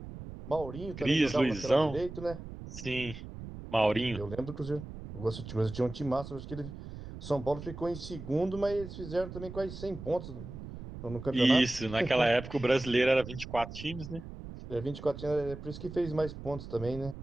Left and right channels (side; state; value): right; noise; rumble, 11 dB below the sound